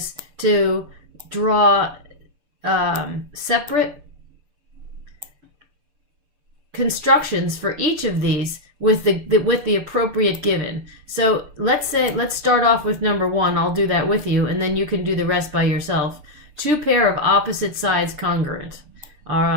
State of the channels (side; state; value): left; late; 6.8 ms